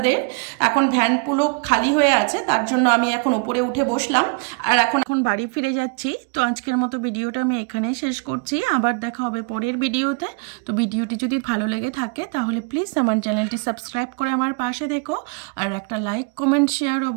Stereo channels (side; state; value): left; quieter; 34.6 dB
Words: এখন ভ্যান পুরো খালি হয়ে আছে, তার জন্য আমি এখন উপরে উঠে বসলাম আর এখন বাড়ি ফিরে যাচ্ছি। তো আজকের মতো ভিডিওটা আমি এখানেই শেষ করছি, আবার দেখা হবে পরের ভিডিওতে। তো ভিডিওটি যদি ভালো লেগে থাকে তাহলে প্লিজ আমার চ্যানেলটি সাবস্ক্রাইব করে আমার পাশে থেকো, আর একটা লাইক কমেন্ট শেয়ার